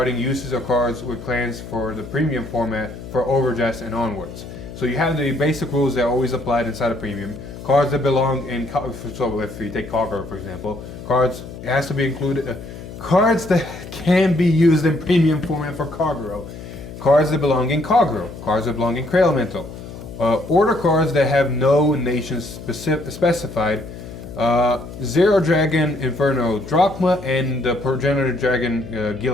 uses of cards with clans for the premium format for overDress and onwards. So you have the basic rules that are always applied inside of premium. Cards that belong in, so if you take Kagura for example, cards, it has to be included, cards that can be used in premium format for Kagura. Cards that belong in Kagura, cards that belong in Cray Elemental. Order cards that have no nations specified. Zero Dragon Inferno Drachma and the Progenitor Dragon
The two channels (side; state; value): left; noise; hum, 13 dB below the sound